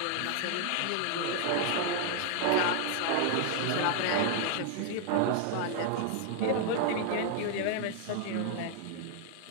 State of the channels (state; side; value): different; both; correlation 0.00